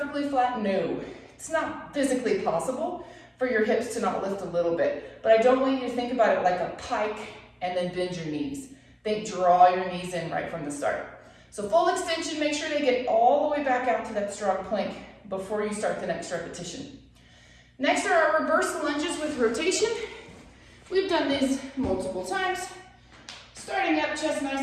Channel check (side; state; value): both; identical; correlation 1.00